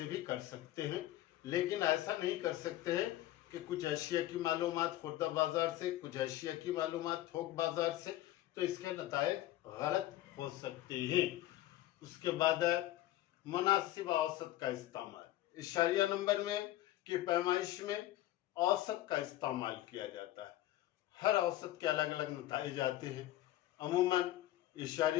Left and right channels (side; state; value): right; quieter; 14.9 dB